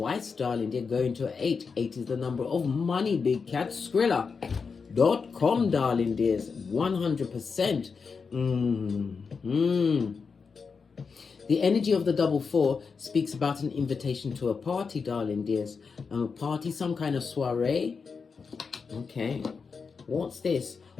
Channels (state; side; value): quieter; right; 5.3 dB